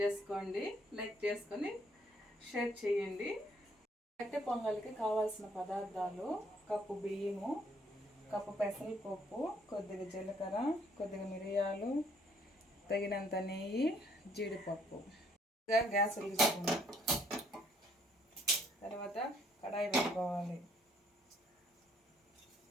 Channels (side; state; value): both; normal; correlation 0.65